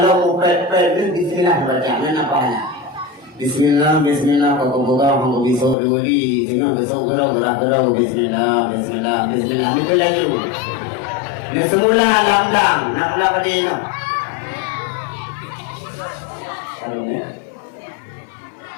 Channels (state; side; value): drops out; right; at 5.8 s